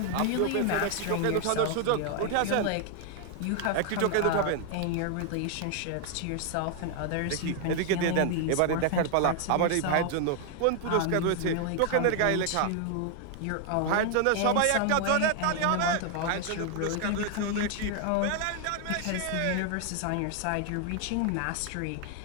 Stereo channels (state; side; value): different; both; correlation 0.00